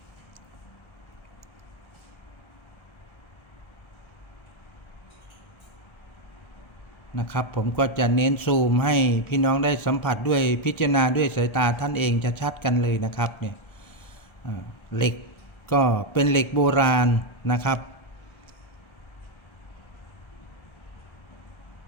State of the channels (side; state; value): right; late; 1.3 ms